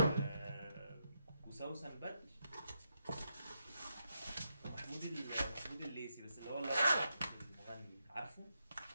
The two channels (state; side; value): inverted; both; correlation -0.83